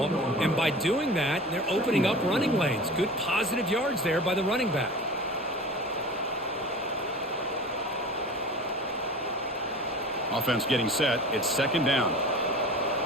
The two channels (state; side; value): normal; both; correlation 0.37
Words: and by doing that, they're opening up running lanes. Good positive yards there by the running back. Offense getting set. It's 2nd down.